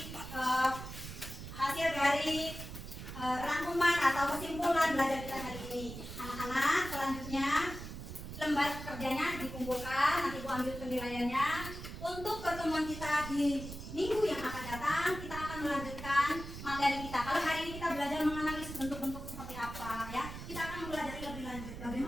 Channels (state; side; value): noise; right; rumble, 10 dB below the sound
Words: dari rangkuman atau kesimpulan belajar kita hari ini. Anak-anak, selanjutnya lembar kerjanya dikumpulkan, nanti Bu ambil penilaiannya. Untuk pertemuan kita di minggu yang akan datang, kita akan melanjutkan materi kita. Kalau hari ini kita belajar menganalisis bentuk-bentuk seperti apa, ya, kita akan belajar lebih lanjut